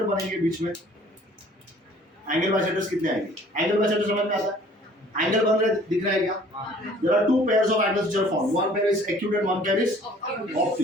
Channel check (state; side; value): normal; both; correlation 0.53